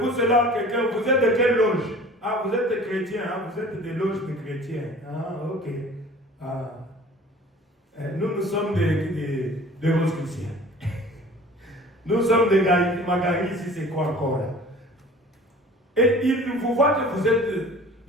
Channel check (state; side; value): normal; both; correlation 0.46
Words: cela que quelqu'un, vous êtes de quelle loge? Ah, vous êtes des chrétiens, vous êtes des loges de chrétiens. Ah, ok. Nous sommes des rosicruciens. Nous sommes des Magali, si c'est quoi encore là. Et ils vous voient que vous êtes.